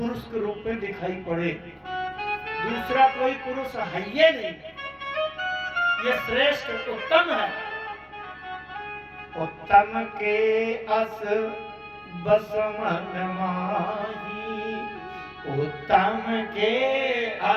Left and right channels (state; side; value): identical; both; correlation 1.00